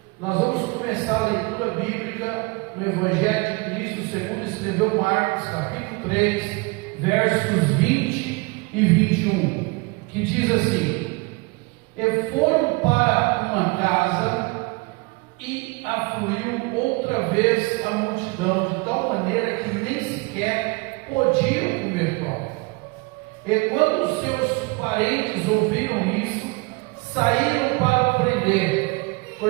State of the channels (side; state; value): left; quieter; 27.2 dB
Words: Nós vamos começar a leitura bíblica no Evangelho de Cristo, segundo escreveu Marcos, capítulo 3, versos 20 e 21, que diz assim: E foram para uma casa, e afluiu outra vez a multidão, de tal maneira que nem sequer podiam comer pão. E quando os seus parentes ouviram isso, saíram para prender,